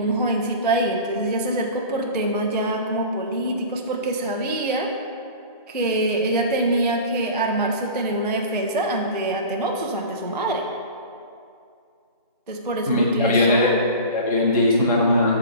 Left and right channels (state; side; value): inverted; both; correlation -0.35